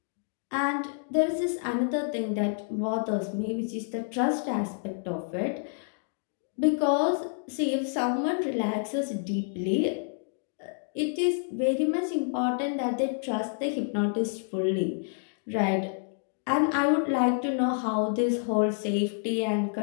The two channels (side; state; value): right; silent; digital silence